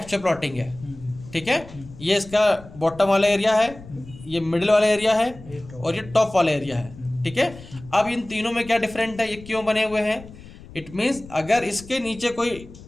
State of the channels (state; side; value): noise; left; rumble, 18 dB below the sound